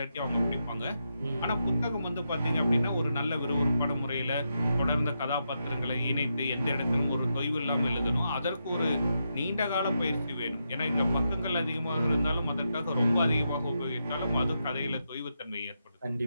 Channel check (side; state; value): both; inverted; correlation -0.84